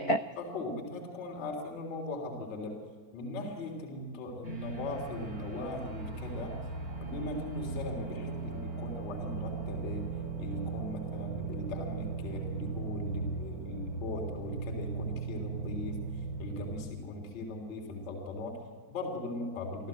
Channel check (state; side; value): late; right; 4.4 ms